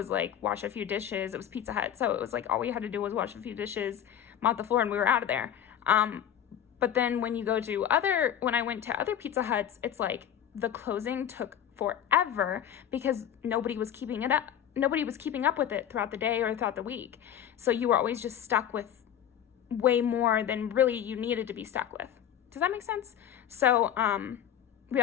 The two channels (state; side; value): quieter; right; 10.0 dB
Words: like wash a few dishes. It was Pizza Hut, so it was like all we had to do was wash a few dishes, mop the floor, and we were out of there. But then when I went to other Pizza Huts, it's like the closing took forever because nobody was keeping it up. Nobody was keeping up with it throughout the day or throughout the week. So you were always just stuck with way more than really you needed to be stuck with. Does that make sense? So, we